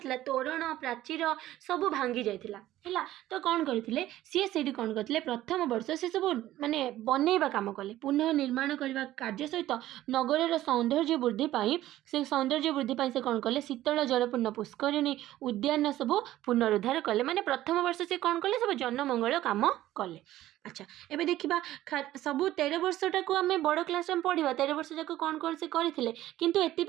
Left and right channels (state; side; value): quieter; left; 14.5 dB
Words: ତୋରଣ ପ୍ରାଚୀର ସବୁ ଭାଙ୍ଗି ଯାଇଥିଲା ହେଲା। ତ କ'ଣ କରିଥିଲେ ସିଏ, ସେଇଠି କ'ଣ କରିଥିଲେ, ପ୍ରଥମ ବର୍ଷ ସେ ସବୁ ମାନେ ବନେଇବା କାମ କଲେ, ପୁନଃ ନିର୍ମାଣ କରିବା କାର୍ଯ୍ୟ ସହିତ ନଗରର ସୌନ୍ଦର୍ଯ୍ୟ ବୃଦ୍ଧି ପାଇଁ ସେ କ'ଣ କଲେ, ଶୀତଳ ଜଳପୂର୍ଣ୍ଣ ପୁଷ୍କରିଣୀ ଉଦ୍ୟାନ ସବୁ ପୁନରୁଦ୍ଧାର କଲେ। ମାନେ ପ୍ରଥମ ବର୍ଷ ସେ କ'ଣ କଲେ, ସବୁ ଜନମଙ୍ଗଳ କାମ କଲେ। ଆଚ୍ଛା, ଏବେ ଦେଖିବା ସବୁ 13 ବର୍ଷଟାକୁ ଆମେ ବଡ଼ କ୍ଲାସ୍ରେ ଆମେ ପଢ଼ିବା, 13 ବର୍ଷ ଯାକ କ'ଣ କ'ଣ ସେ କରିଥିଲେ। କିନ୍ତୁ